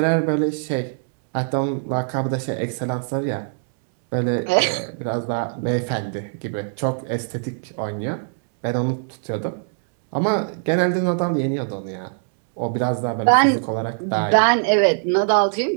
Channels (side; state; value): left; silent; 64 dB below the other